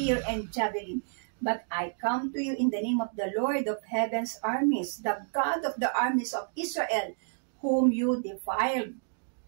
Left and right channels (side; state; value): left; silent; digital silence